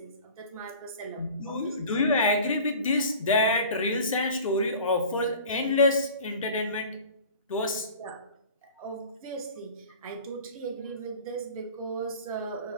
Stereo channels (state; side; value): inverted; both; correlation -0.42